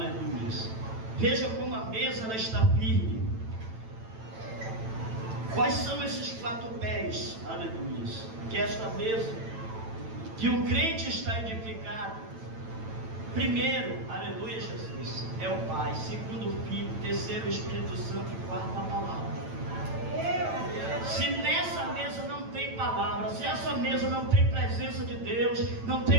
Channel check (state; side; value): late; left; 9.0 ms